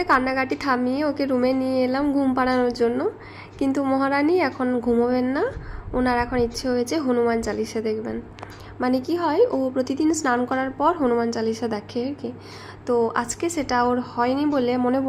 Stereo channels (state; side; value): identical; both; correlation 1.00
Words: কান্নাকাটি থামিয়ে ওকে রুমে নিয়ে এলাম ঘুম পাড়ানোর জন্য। কিন্তু মহারানী এখন ঘুমোবেন না, ওনার এখন ইচ্ছে হয়েছে হনুমান চালিসা দেখবেন। মানে কি হয়, ও প্রতিদিন স্নান করার পর হনুমান চালিসা দেখে আর কি। তো আজকে সেটা ওর হয়নি বলে মনে